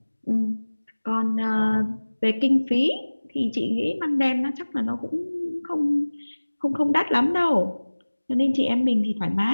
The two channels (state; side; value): inverted; both; correlation -1.00